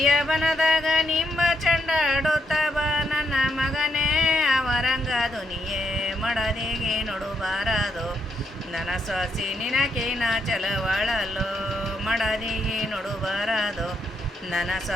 ಬನದಾಗ ನಿಂಬ ಚಂಡಾಡುತ್ತ ಬಾ ನನ್ನ ಮಗನೇ ಅವರಂಗ ಧ್ವನಿಯೇ ಮಡದಿಗೆ ನೋಡುಬಾರದು ನನ್ನ ಸೊಸಿ ನಿನಕಿನ ಚಲವಳಲು ಮಡದಿಗೆ ನೋಡುಬಾರದು ನನ್ನ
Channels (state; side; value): normal; both; correlation 0.79